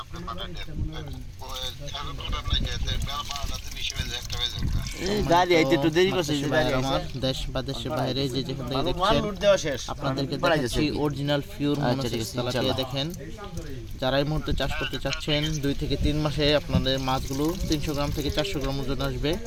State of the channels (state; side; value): identical; both; correlation 1.00